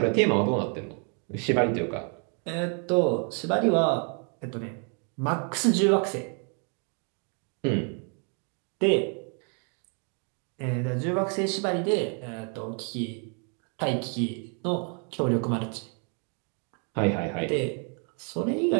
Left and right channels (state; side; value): quieter; left; 40.0 dB